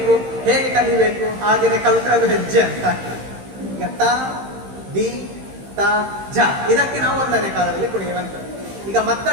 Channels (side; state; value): left; late; 15 ms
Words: ಹೇಗೆ ಕಲಿಬೇಕು, ಹಾಗೇನೆ ಕಲ್ತ್ರೆ ಅದು ಹೆಜ್ಜೆ ಅಂತ ಆಗ್ತದೆ. ಈಗ ತ ದಿ ತ ಜ ಇದಕ್ಕೆ ನಾವು 1ನೇ ಕಾಲದಲ್ಲಿ ಕುಣಿಯುವಂಥದ್ದು. ಈಗ